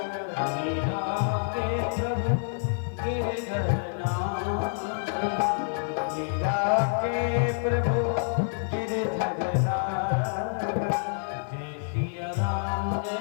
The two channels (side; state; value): right; silent; 59 dB below the other